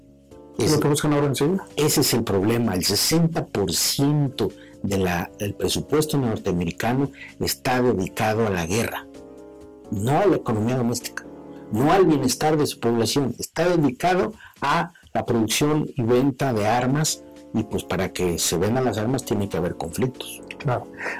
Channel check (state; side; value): identical; both; correlation 1.00